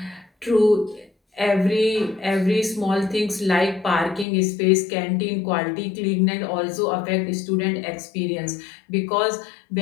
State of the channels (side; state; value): right; drops out; at 4.2 s